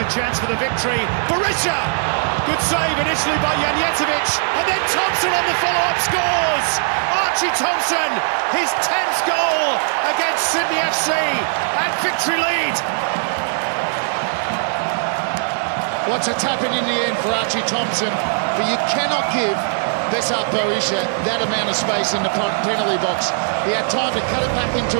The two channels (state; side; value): silent; left; digital silence